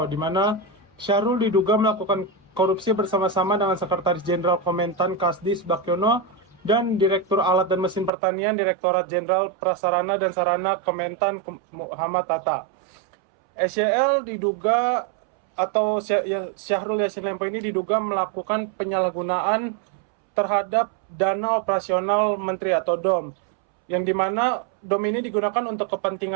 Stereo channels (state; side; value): drops out; left; at 8.1 s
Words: di mana Syahrul diduga melakukan korupsi bersama-sama dengan Sekretaris Jenderal Kementan Kasdis Bakyono dan Direktur Alat dan Mesin Pertanian Direktorat Jenderal Prasarana dan Sarana Kementan Muhammad Tata. SYL diduga atau Syahrul Yassin Limpo ini diduga melakukan penyalahgunaan terhadap dana operasional Menteri atau DOM, yang dimana DOM ini digunakan untuk